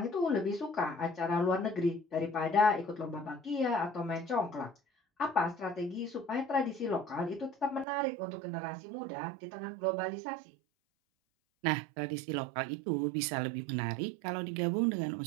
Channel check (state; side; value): drops out; left; at 7.9 s